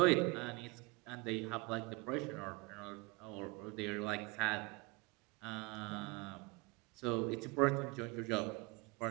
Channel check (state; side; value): quieter; left; 25.8 dB